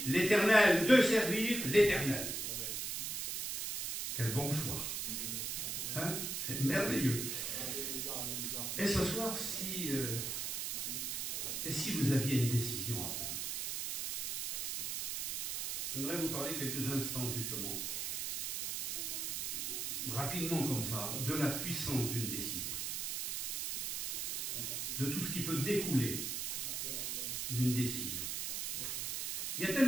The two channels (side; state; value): right; noise; hiss, 2 dB below the sound